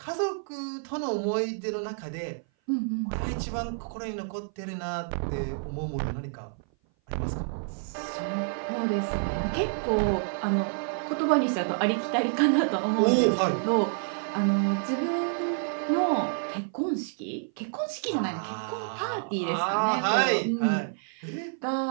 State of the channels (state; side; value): silent; left; 57 dB below the other